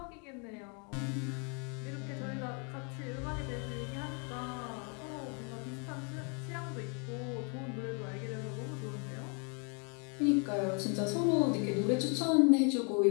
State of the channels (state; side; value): quieter; right; 36.8 dB